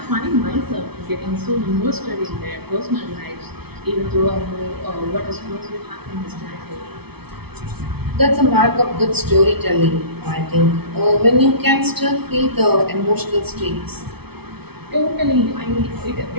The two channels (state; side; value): late; left; 0.97 ms